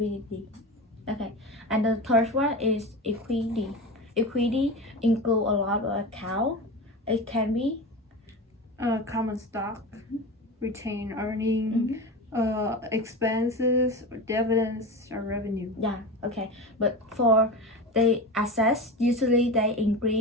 Okay, and the third one is equity. Equity include a lot of account. It can be Common stock, retained earning, expenses, or dividends, or revenue. yeah. Okay, but for the assets, usually they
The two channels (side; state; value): both; normal; correlation 0.26